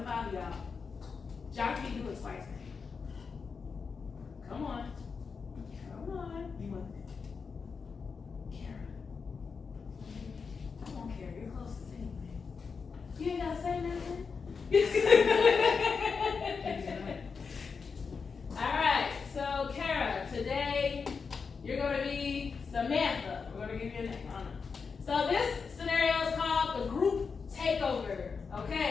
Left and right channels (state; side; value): quieter; right; 5.4 dB